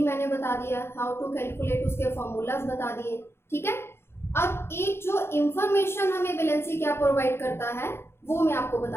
मैंने बता दिया, हाउ टू कैलकुलेट, उसके फॉर्मूलाज बता दिए, ठीक है। अब एक जो इंफॉर्मेशन हमें वैलेंसी क्या प्रोवाइड करता है वो मैं आपको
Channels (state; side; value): late; right; 0.12 ms